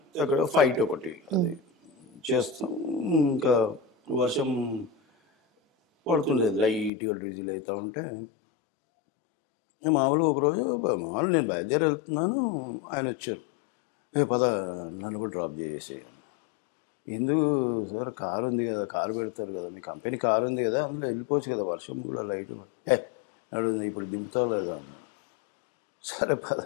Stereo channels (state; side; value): drops out; right; at 6.9 s